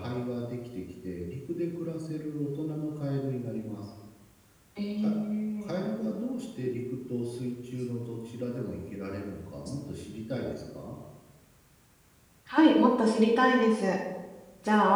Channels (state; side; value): identical; both; correlation 1.00